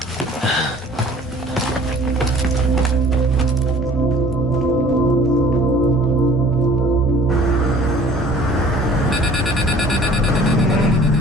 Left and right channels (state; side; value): normal; both; correlation 0.51